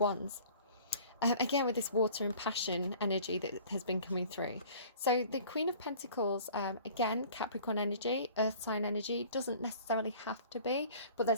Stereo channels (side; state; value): both; inverted; correlation -0.48